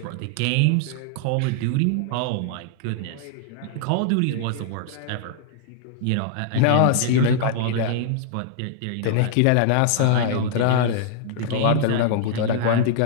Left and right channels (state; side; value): different; both; correlation -0.01